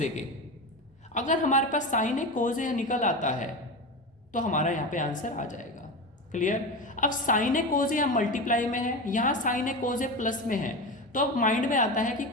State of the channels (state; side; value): normal; both; correlation 0.23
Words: ए के। अगर हमारे पास साइन ए कोस ए निकल आता है तो हमारा यहाँ पे आंसर आ जाएगा। क्लियर? अब sign A cos A multiply में है, यहाँ sign A cos A plus में है, तो अब माइंड में आता है कि